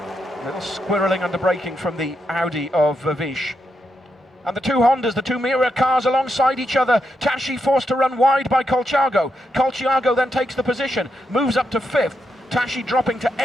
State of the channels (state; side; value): normal; both; correlation 0.82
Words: A little squirreling under braking from the Audi of Vervish. And the two Hondas, the two mirror cars alongside each other. Tashi forced to run wide by Colciago. Colciago then takes the position, moves up to 5th. Tashi dropping to